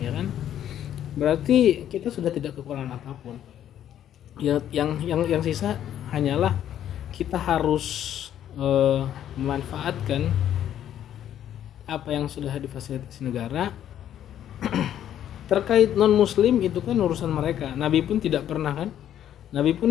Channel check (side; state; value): right; quieter; 10.8 dB